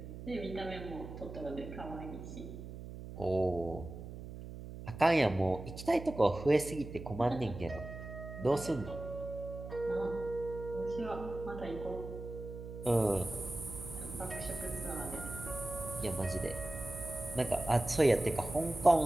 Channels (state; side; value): noise; right; hum, 11 dB below the sound